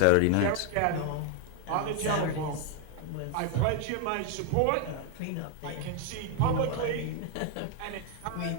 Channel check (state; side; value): different; both; correlation 0.00